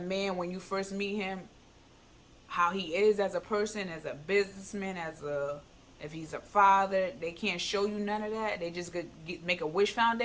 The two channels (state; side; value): identical; both; correlation 1.00